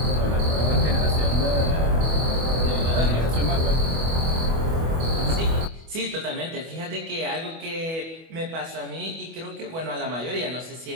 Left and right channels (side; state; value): left; late; 25 ms